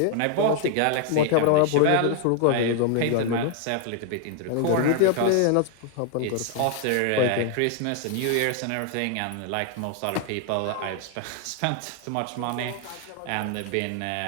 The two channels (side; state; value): both; different; correlation 0.00